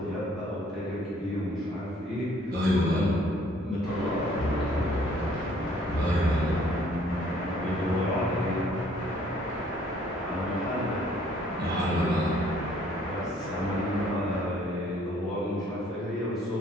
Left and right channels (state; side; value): normal; both; correlation 0.60